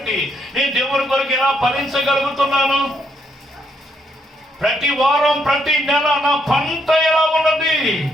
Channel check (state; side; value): normal; both; correlation 0.75